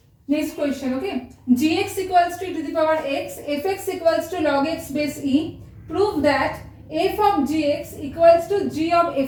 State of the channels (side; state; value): both; identical; correlation 1.00